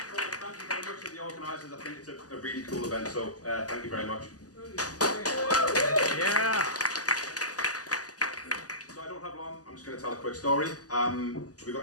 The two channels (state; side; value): late; right; 0.67 ms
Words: Thank you very much to the organisers. I think it's a really cool event, so thank you very much. Yeah. So I don't have long. I'm just going to tell a quick story. Have we